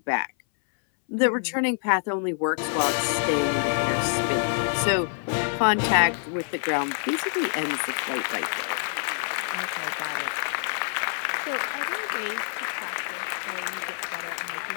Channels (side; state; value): right; silent; 61 dB below the other